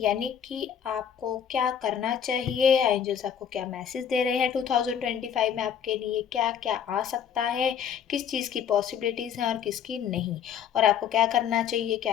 यानी कि आपको क्या करना चाहिए, एंजल्स आपको क्या मैसेज दे रहे हैं 2025 में आपके लिए क्या क्या आ सकता है, किस चीज़ की पॉसिबिलिटीज़ हैं और किसकी नहीं, और आपको क्या करना चाहिए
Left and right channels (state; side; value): quieter; right; 8.4 dB